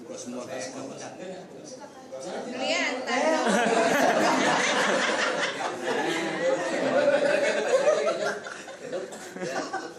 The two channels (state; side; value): identical; both; correlation 1.00